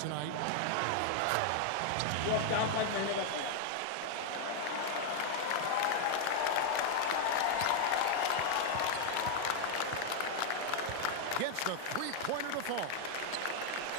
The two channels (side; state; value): both; different; correlation 0.00